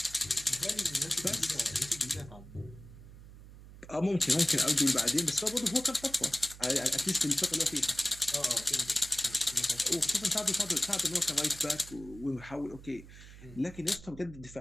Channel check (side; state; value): right; noise; hum, 17 dB below the sound